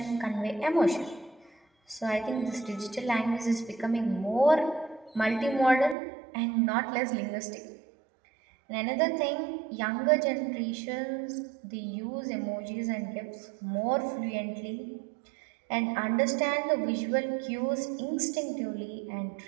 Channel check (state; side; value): drops out; left; at 6.0 s